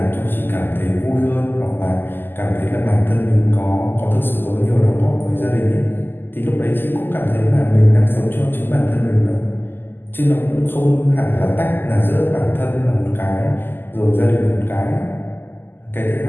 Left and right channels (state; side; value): late; right; 0.096 ms